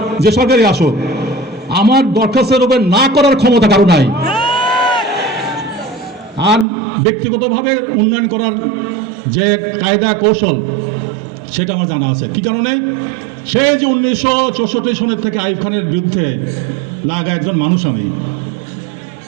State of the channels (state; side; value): drops out; left; at 6.7 s